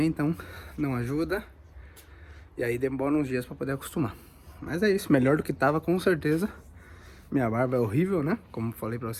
então não ajuda. E aí demora uns dias pra poder acostumar. Mas é isso, melhor do que tava com certeza. Minha barba é horrível, né? Como falei pra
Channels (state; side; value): identical; both; correlation 1.00